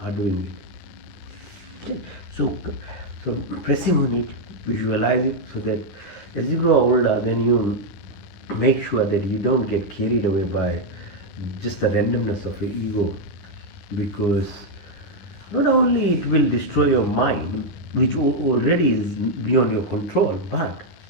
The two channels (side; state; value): right; late; 11 ms